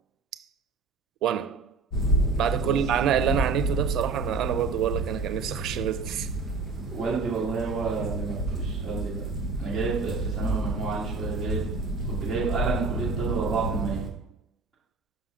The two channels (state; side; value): quieter; left; 4.3 dB